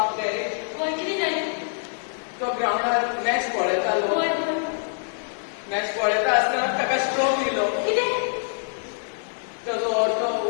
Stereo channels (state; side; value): silent; right; digital silence